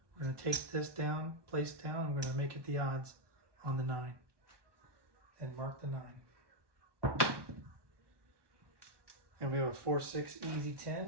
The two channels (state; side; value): late; left; 1.2 ms